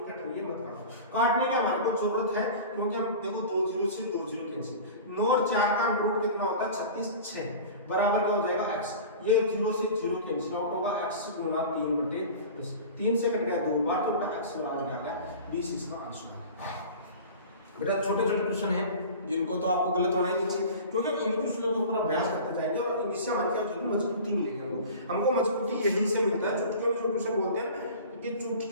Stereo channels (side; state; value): both; inverted; correlation -0.37